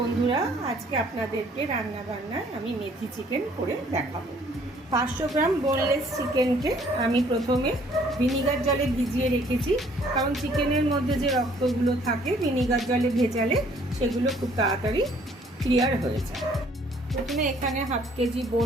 আজকে আপনাদেরকে রান্না বান্নায় আমি মেথি চিকেন করে দেখাবো। 500 গ্রাম বোনলেস চিকেনকে আমি প্রথমে ভিনিগার জলে ভিজিয়ে রেখেছি, কারণ চিকেনের মধ্যে যে রক্তগুলো থাকে ভিনিগার জলে ভেজালে সেগুলো খুব তাড়াতাড়ি ক্লিয়ার হয়ে যায়। প্রথমে এখানে হাফ কেজি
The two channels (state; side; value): normal; both; correlation 0.60